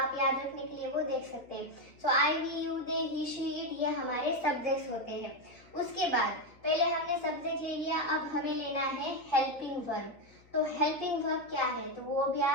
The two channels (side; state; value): left; noise; hum, 28 dB below the sound